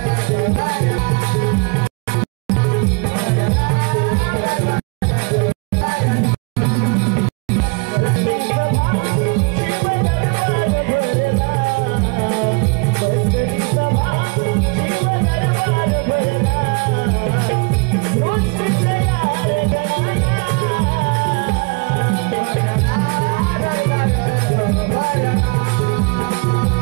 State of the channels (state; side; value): quieter; left; 31.5 dB